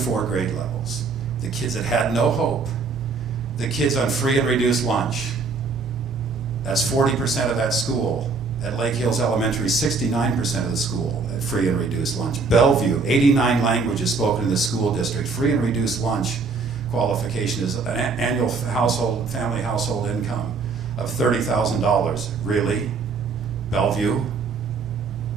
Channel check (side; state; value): left; quieter; 4.5 dB